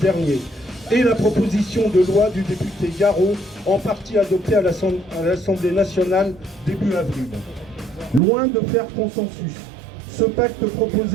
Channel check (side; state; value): left; drops out; at 8.2 s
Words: et la proposition de loi du député Garot, en partie adoptée à l'Assemblée nationale début avril. Loin de faire consensus, ce pacte